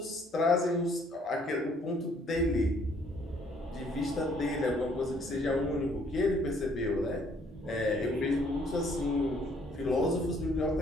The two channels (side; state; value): both; normal; correlation 0.63